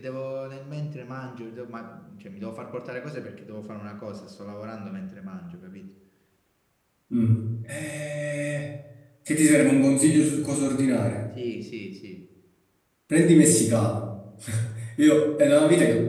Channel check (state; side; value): identical; both; correlation 1.00